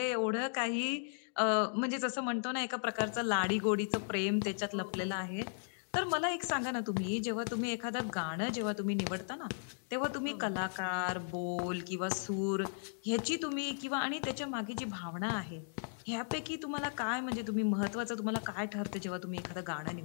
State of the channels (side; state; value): right; silent; digital silence